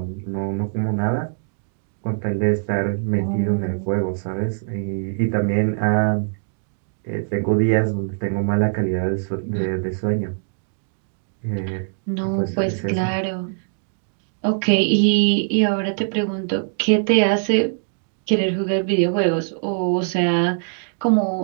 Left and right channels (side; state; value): left; silent; digital silence